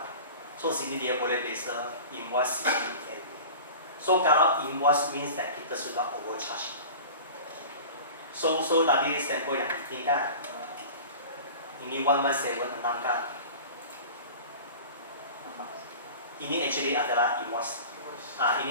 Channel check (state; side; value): inverted; both; correlation -0.37